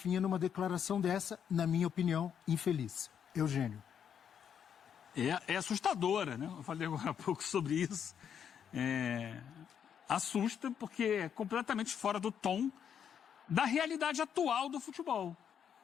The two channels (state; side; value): quieter; right; 8.2 dB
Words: numa declaração dessa, na minha opinião, infeliz. Eugênio. É assustadora, né? Eu falei agora há pouco sobre isso. Assusta porque é completamente fora do tom da realidade atual do futebol.